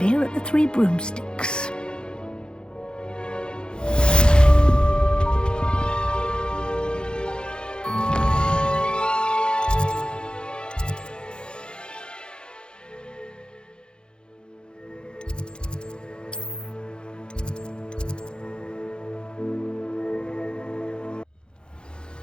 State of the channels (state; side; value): late; right; 0.049 ms